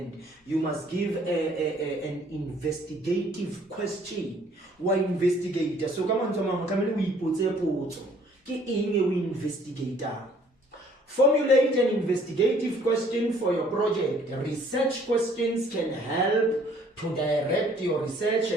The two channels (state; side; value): normal; both; correlation 0.59